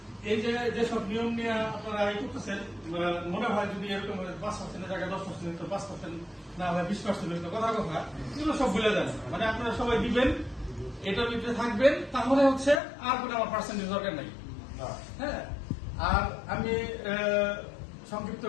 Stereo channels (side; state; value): right; drops out; at 12.8 s